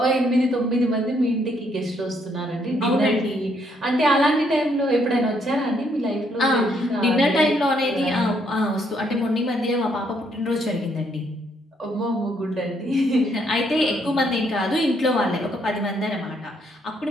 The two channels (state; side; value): normal; both; correlation 0.71